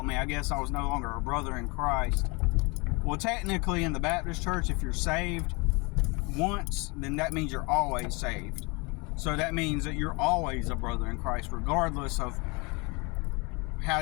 me. I guess I was no longer a brother in Christ. Well, technically in the Baptist church, if you're saved once, then that means you're always saved. So that means that you're always a brother in Christ, regardless of how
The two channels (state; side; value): quieter; right; 28.7 dB